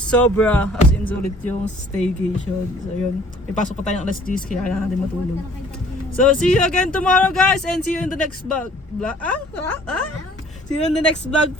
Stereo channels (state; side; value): normal; both; correlation 0.55